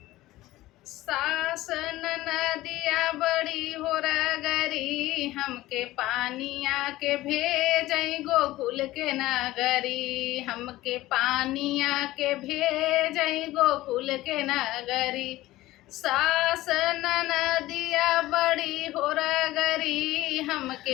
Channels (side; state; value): right; quieter; 17.0 dB